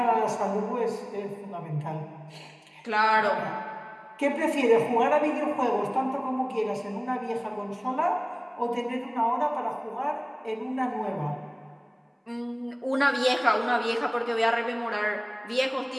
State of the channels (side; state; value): both; identical; correlation 1.00